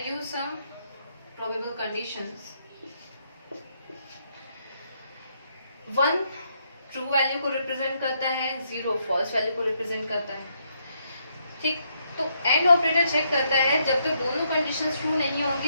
use some probable conditions. 1 true value को represent करता है, 0 false value को represent करता है। ठीक, तो and operator check करता है जब तक दोनों कंडीशंस ट्रू नहीं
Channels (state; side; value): inverted; both; correlation -0.76